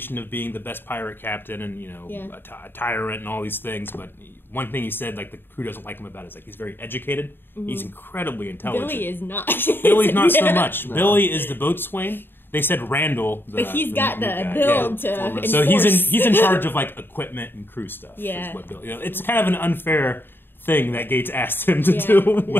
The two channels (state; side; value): late; right; 0.099 ms